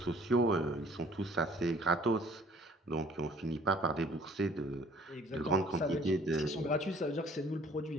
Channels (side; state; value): both; normal; correlation 0.54